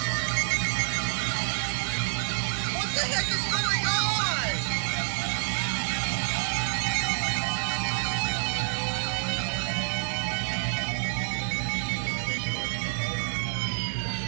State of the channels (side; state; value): left; silent; digital silence